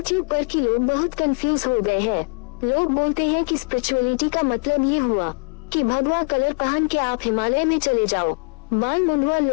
पर कि लोग बहुत कंफ्यूज हो गए हैं। लोग बोलते हैं कि स्पिरिचुअलिटी का मतलब ये हुआ कि भगवा कलर पहन के आप हिमालय में चले जाओ, बाल मुंडवा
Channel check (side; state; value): right; quieter; 34.3 dB